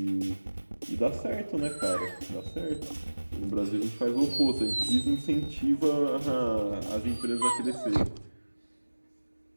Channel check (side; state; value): both; inverted; correlation -1.00